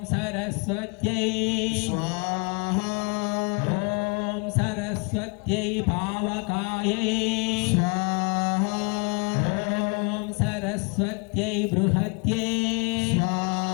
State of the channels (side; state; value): right; quieter; 33.8 dB